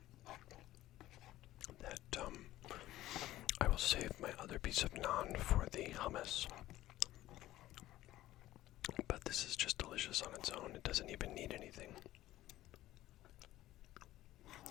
that I will save my other piece of naan for the hummus. But this is just delicious on its own. It doesn't even need anything.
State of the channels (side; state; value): right; quieter; 15.2 dB